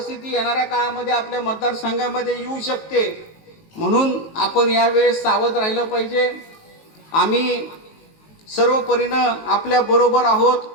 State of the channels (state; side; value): late; right; 19 ms